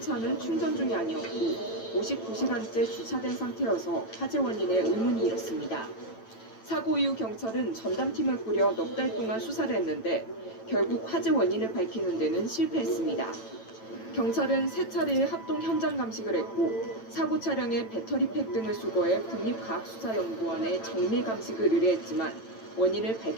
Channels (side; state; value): right; late; 9.0 ms